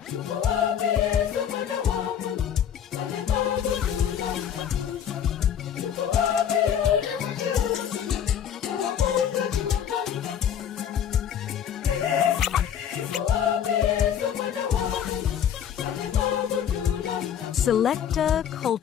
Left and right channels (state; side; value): quieter; right; 9.0 dB